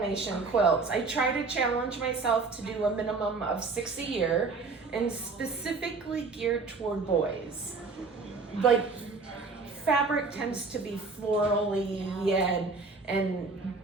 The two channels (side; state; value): left; quieter; 4.2 dB